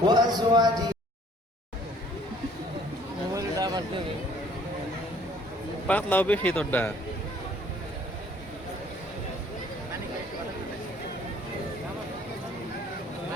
وأزواجه পাতলাও বেশি তোরটা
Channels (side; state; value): both; normal; correlation 0.58